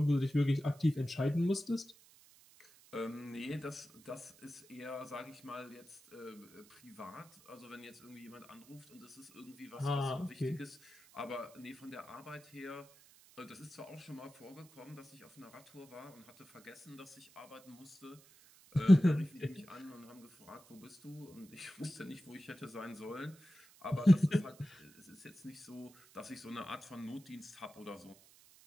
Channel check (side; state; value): right; noise; hiss, 25 dB below the sound